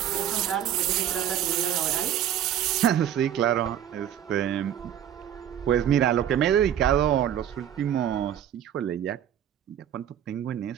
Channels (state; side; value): quieter; left; 10.2 dB